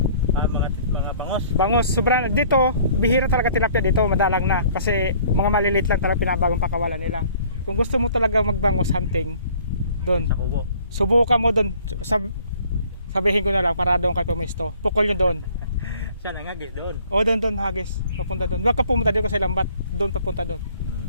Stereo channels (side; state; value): both; inverted; correlation -0.55